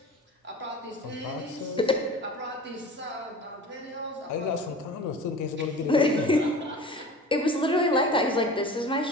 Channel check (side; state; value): both; normal; correlation 0.38